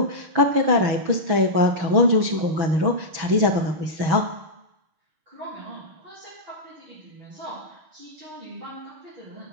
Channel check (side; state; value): left; late; 6.1 ms